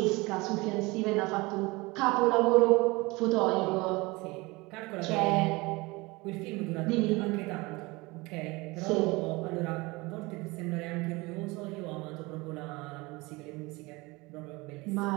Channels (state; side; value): quieter; left; 23.6 dB